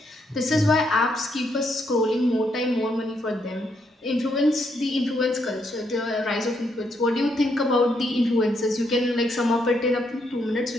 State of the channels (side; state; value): both; normal; correlation 0.76